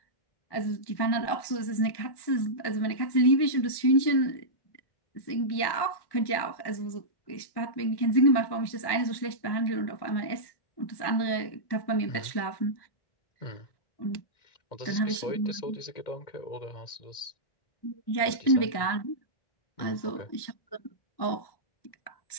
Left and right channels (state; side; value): late; right; 1.1 ms